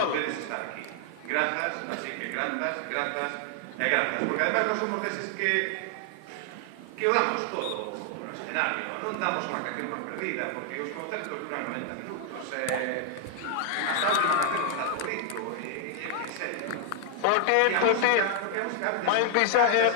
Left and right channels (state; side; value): different; both; correlation 0.00